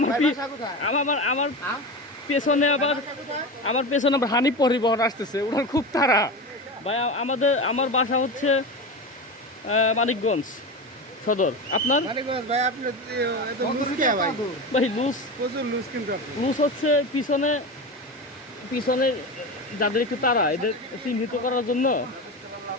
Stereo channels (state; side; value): normal; both; correlation 0.24